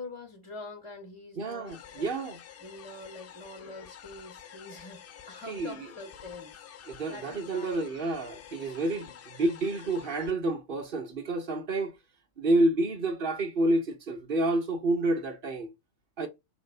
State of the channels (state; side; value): late; left; 2.6 ms